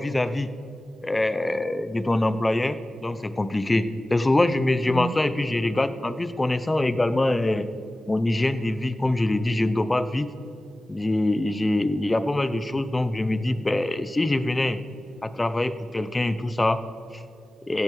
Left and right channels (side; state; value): both; normal; correlation 0.97